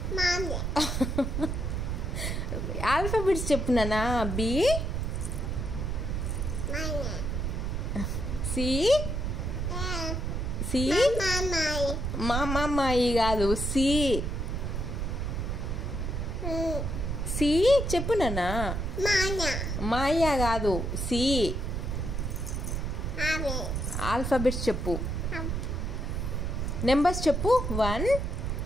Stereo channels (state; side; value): noise; right; rumble, 2 dB below the sound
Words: ఆల్ఫాబెట్స్ చెప్పు నాన్న. బి సి సి మామాయి కాదు, సి సి చెప్పు నాన్న. మాయా కాదు, సి. ఆల్ఫాబెట్స్ చెప్పు. నెంబర్స్ చెప్పు. 1